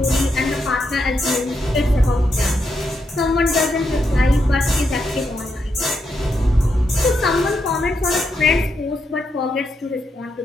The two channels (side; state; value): both; normal; correlation 0.82